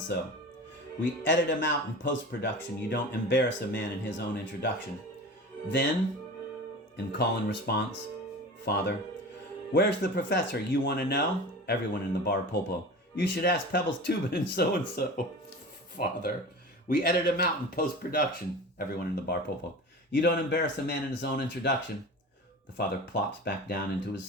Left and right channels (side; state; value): both; normal; correlation 0.34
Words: We edit him out in post-production. You don't embarrass a man in his own introduction. Then, in call-in response, Father, where's the professor? You want to know? Everyone in the bar pulpo. You should ask Pebbles Tubin and so-and-so. Father, we edit him out in post-production. Everyone in the bar pulpo. You don't embarrass a man in his own introduction. The father plops back down into his